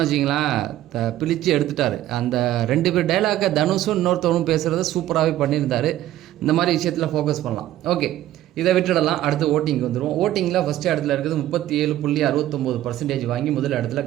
வச்சிங்களேன், பிழிச்சு எடுத்துட்டார். அந்த 2 பேர் டைலாக்கை தனுஷும் இன்னொருத்தவனும் பேசுகிறத சூப்பராகவே பண்ணியிருந்தார். இந்த மாதிரி விஷயத்தில் ஃபோக்கஸ் பண்ணலாம். ஓகே, இதை விட்டுடலாம். அடுத்து ஓட்டிங் வந்துடும். ஓட்டிங்கில் ஃபஸ்ட்டு இடத்துல இருக்குது 37.69% வாங்கி முதல் இடத்துல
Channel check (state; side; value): quieter; left; 13.7 dB